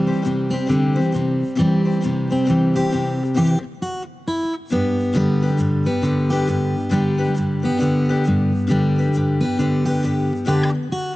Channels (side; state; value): both; normal; correlation 0.96